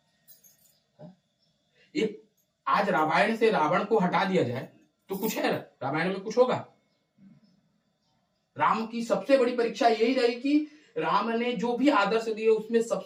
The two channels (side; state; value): both; identical; correlation 1.00